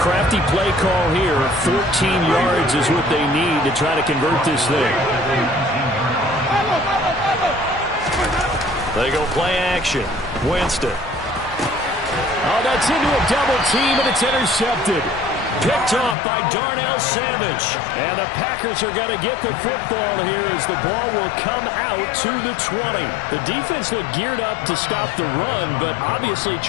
play call here. 14 yards is what they need to try to convert this thing. They go play action. Winston. Oh, that's into a double team, and it's intercepted. Picked off by Darnell Savage. And the Packers are going to get the football here as the ball will come out to the 20. The defense looked geared up to stop the run, but obviously,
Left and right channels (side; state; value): right; drops out; at 16.2 s